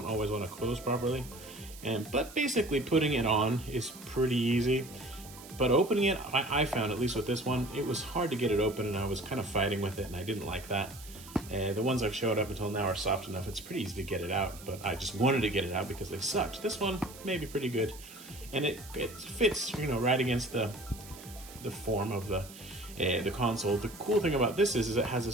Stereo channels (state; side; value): noise; right; hiss, 17 dB below the sound